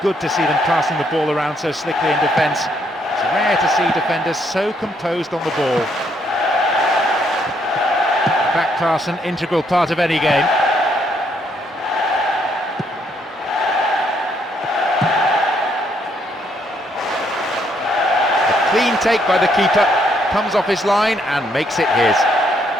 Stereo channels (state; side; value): normal; both; correlation 0.72